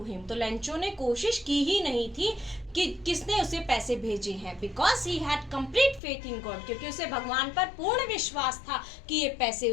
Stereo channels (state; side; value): drops out; right; at 6.0 s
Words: him. तो लेंचो ने कोशिश की ही नहीं थी कि किसने उसे पैसे भेजे हैं, because he had complete faith in God, क्योंकि उसे भगवान पर पूर्ण विश्वास था कि ये पैसे